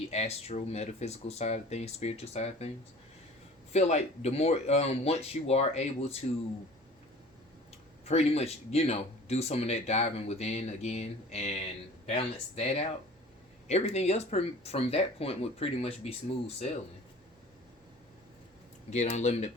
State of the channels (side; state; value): both; normal; correlation 0.45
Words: astral metaphysical side of things, spiritual side of things. Feel like the more once you are able to pretty much, do some of that diving within again and balance that out, everything else from that point would pretty much be smooth sailing. Get unlimited